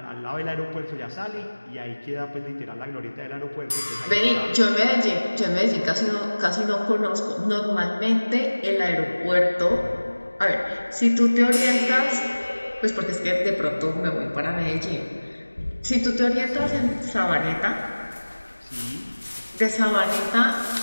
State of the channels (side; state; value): both; inverted; correlation -1.00